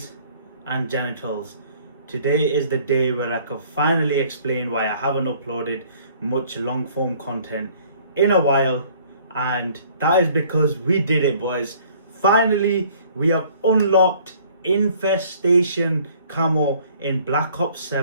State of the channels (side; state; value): both; inverted; correlation -0.56